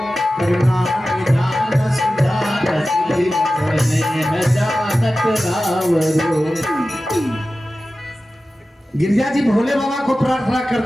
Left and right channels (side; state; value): both; normal; correlation 0.95